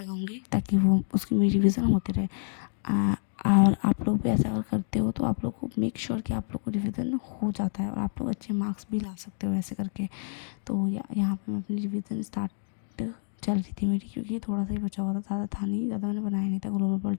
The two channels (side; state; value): right; silent; digital silence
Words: ताकि वो उसकी मेरी रिवीजन होती रहे। और आप लोग भी ऐसा अगर करते हो तो आप लोग को मेक श्योर कि आप लोग को रिवीजन हो जाता है और आप लोग अच्छे मार्क्स भी ला सकते हो ऐसे करके। तो यहाँ पे मैं अपनी रिवीजन स्टार्ट चल रही थी मेरी, क्योंकि थोड़ा सा ही बचा हुआ था, ज़्यादा था नहीं, ज़्यादा मैंने बनाया नहीं था ग्लोबल